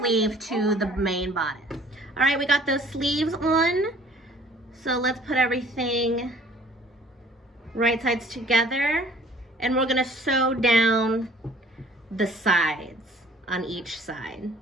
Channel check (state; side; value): normal; both; correlation 0.54